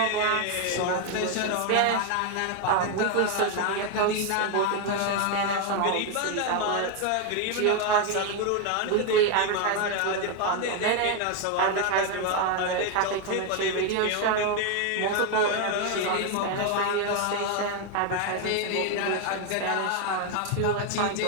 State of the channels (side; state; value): both; different; correlation 0.01